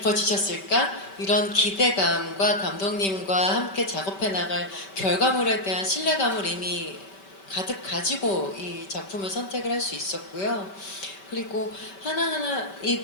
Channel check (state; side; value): late; right; 5.2 ms